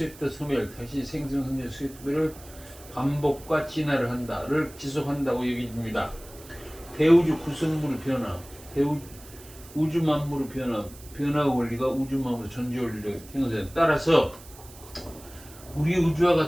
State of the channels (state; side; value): noise; right; hiss, 20 dB below the sound